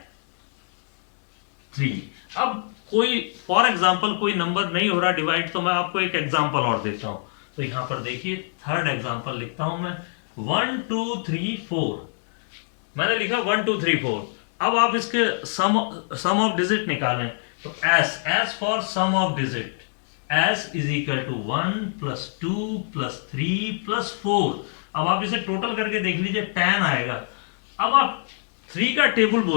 3। अब कोई फॉर एग्जाम्पल कोई नंबर नहीं हो रहा डिवाइड, तो मैं आपको एक एग्जाम्पल और देता हूं। तो यहां पर देखिए थर्ड एग्जाम्पल लिखता हूं मैं, 1 2 3 4। मैंने लिखा 1 2 3 4। अब आप इसके सम ऑफ डिजिट निकालें, तो S for sum of digit, S = 1 + 2 + 3 + 4। अब आप इसे टोटल करके देख लीजिए 10 आएगा। अब आप 3 का टेबल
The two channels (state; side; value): silent; right; digital silence